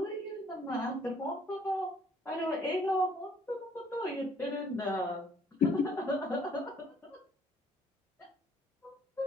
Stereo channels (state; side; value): normal; both; correlation 0.62